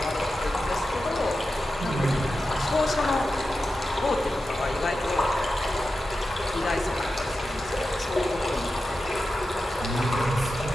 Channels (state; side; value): normal; both; correlation 0.91